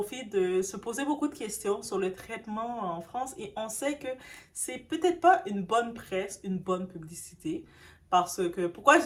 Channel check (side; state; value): both; identical; correlation 1.00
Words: de se poser beaucoup de questions sur le traitement en France. Et on sait que c'est peut-être pas une bonne presse, une bonne publicité. Parce que, pourquoi je